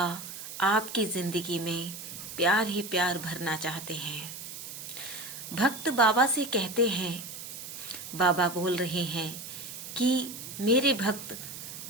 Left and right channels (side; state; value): right; noise; hiss, 10 dB below the sound